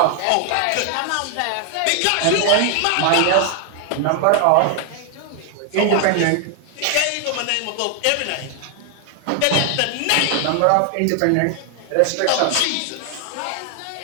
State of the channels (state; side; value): different; both; correlation 0.00